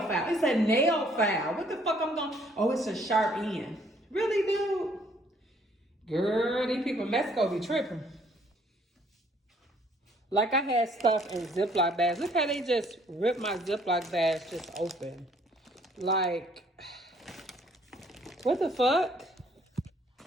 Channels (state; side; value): normal; both; correlation 0.62